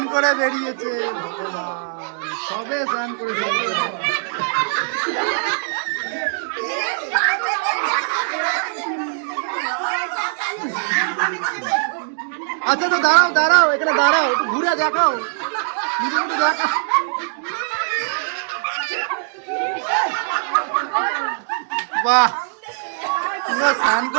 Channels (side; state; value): left; silent; digital silence